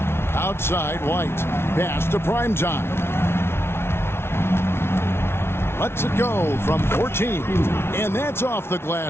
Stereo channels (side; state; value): right; late; 0.12 ms